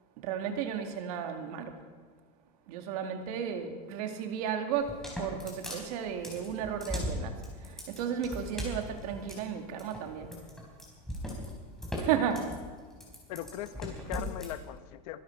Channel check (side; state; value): left; quieter; 4.9 dB